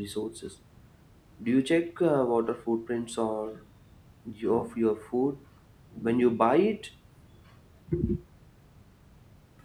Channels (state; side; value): identical; both; correlation 1.00